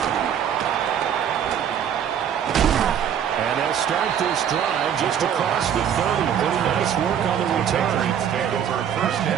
And they'll start this drive just across the 30. Pretty nice work on the return. Patriots take over 1st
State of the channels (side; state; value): left; quieter; 8.9 dB